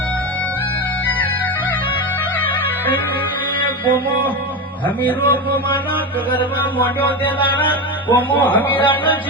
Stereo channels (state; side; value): normal; both; correlation 0.18